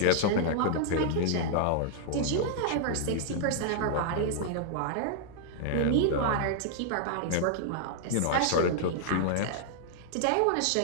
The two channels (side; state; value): both; different; correlation -0.01